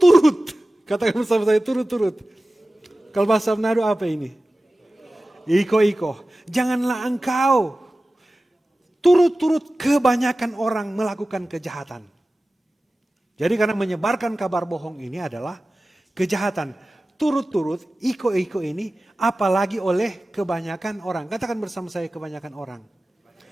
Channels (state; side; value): normal; both; correlation 0.96